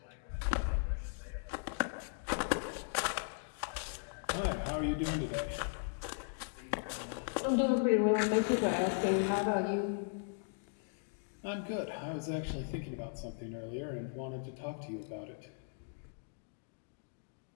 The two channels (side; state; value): right; silent; digital silence